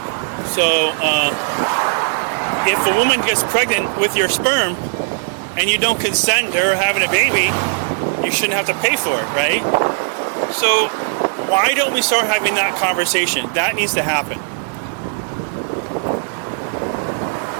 So, if a woman gets pregnant with your sperm and you don't consent to her having a baby, you shouldn't have to pay for it, right? So why don't we start having that conversation? That needs to happen.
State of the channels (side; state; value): left; silent; digital silence